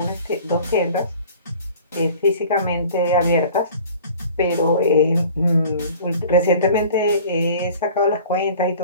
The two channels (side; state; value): both; inverted; correlation -0.46